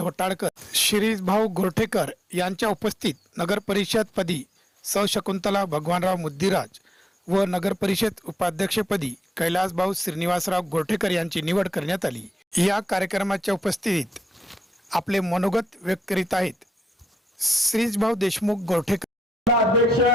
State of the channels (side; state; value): both; normal; correlation 0.84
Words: शिरीषभाऊ गोरठेकर यांच्या उपस्थित नगरपरिषदपदी सौ शकुंतला भगवानराव मुद्दीराज व नगरपरिषद उपाध्यक्षपदी कैलासभाऊ श्रीनिवासराव गोरठेकर यांची निवड करण्यात आली। या कार्यक्रमाच्या उपस्थितीत आपले मनोगत व्यक्त करीत आहेत श्रीषभाऊ देशमुख गोरठेकर। अध्यक्ष